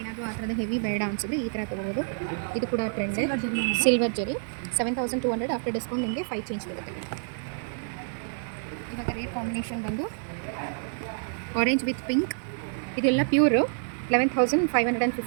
ಏನಾದರೂ ಆ ಥರದ ಹೆವಿ ಬೇಡ ಅನಿಸಿದ್ರೆ ಈ ಥರ ತೊಗೋಬೋದು. ಇದು ಕೂಡ ಟ್ರೆಂಡೇ. ಸಿಲ್ವರ್ ಜರಿ 7200. ಆಫ್ಟರ್ ಡಿಸ್ಕೌಂಟ್ ನಿಮಗೆ 5 ಚೇಂಜ್ ಬರುತ್ತೆ. ಇವಾಗ ರೇಟ್ ಕಾಂಬಿನೇಷನ್ ಬಂದು ಆರೆಂಜ್ ವಿತ್ ಪಿಂಕ್. ಇದೆಲ್ಲ ಪ್ಯೂರು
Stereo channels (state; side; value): silent; left; digital silence